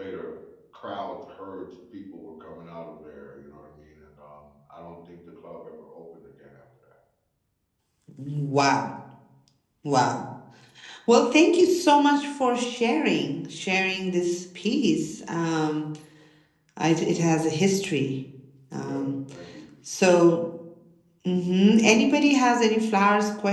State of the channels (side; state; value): both; identical; correlation 1.00